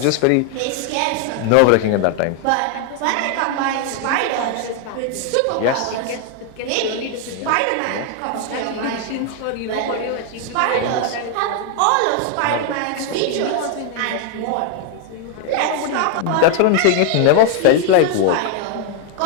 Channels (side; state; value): both; different; correlation 0.00